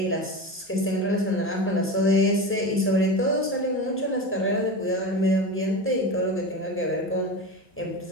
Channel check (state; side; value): normal; both; correlation 0.26